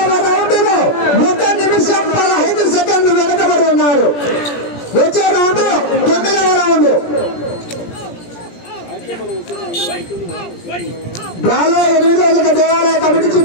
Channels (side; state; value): right; late; 17 ms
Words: రౌండ్ లో 1 నిమిషం 15 సెకండ్లు వెనకబడి ఉన్నారు. వచ్చే రౌండ్ రౌండ్ 9వ రౌండ్. బాగా 8వ దేవాలయ కమిటీ